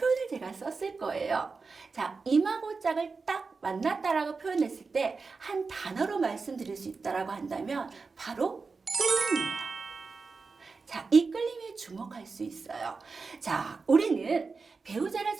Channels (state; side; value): quieter; left; 4.5 dB